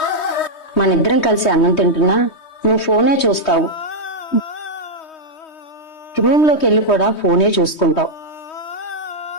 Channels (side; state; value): right; late; 3.2 ms